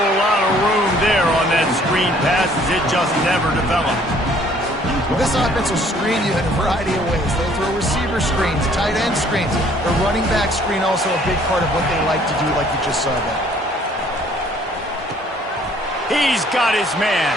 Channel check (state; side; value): normal; both; correlation 0.59